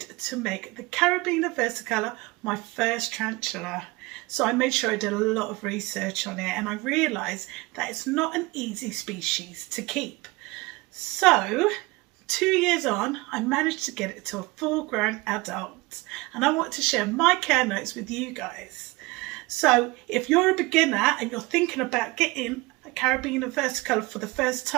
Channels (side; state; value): left; quieter; 23.1 dB